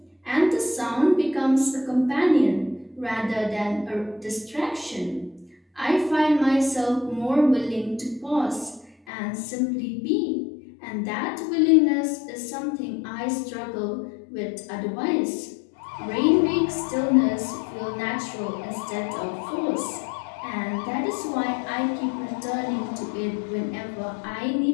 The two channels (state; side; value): drops out; right; at 9.0 s